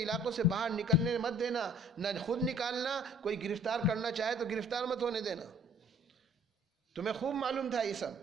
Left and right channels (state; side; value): normal; both; correlation 0.55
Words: علاقوں سے باہر نکلنے مت دینا، نہ خود نکالنا، کوئی گرفتار کرنا چاہے تو گرفتار مت ہونے دینا. تمہیں خوب معلوم تھا یہ سب،